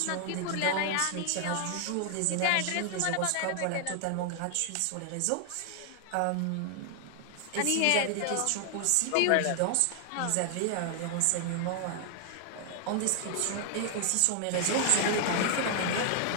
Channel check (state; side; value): different; both; correlation 0.00